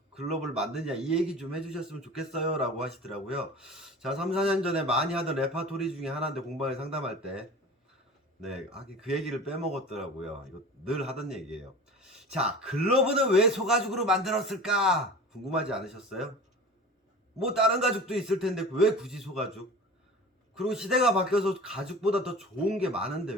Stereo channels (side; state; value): both; normal; correlation 0.37